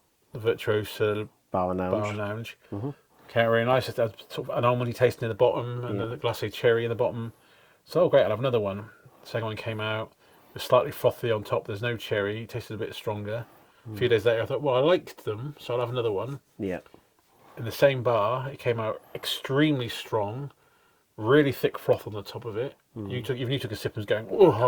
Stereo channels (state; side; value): identical; both; correlation 1.00